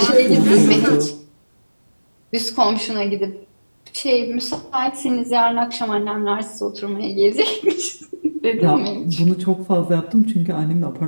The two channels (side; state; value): both; inverted; correlation -1.00